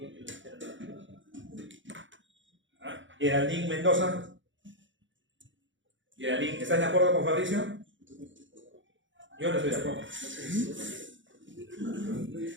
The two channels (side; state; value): left; late; 0.55 ms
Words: los seronegativos. Geraldine Mendoza. Geraldine, ¿estás de acuerdo con Fabricio? Yo no estoy de acuerdo.